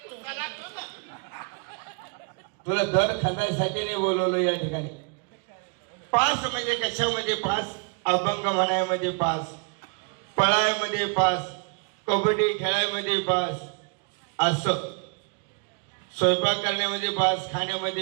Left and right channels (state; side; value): quieter; left; 36.8 dB